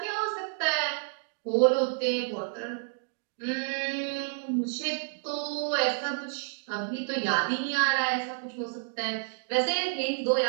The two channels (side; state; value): left; silent; digital silence